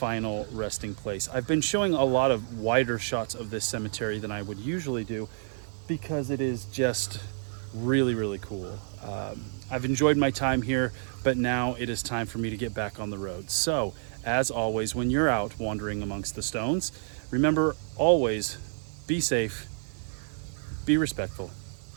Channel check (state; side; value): silent; left; digital silence